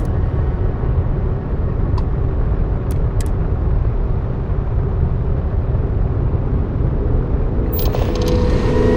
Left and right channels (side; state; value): both; identical; correlation 1.00